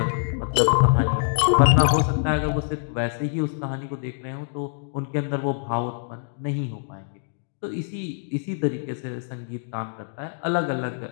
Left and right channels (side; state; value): right; silent; digital silence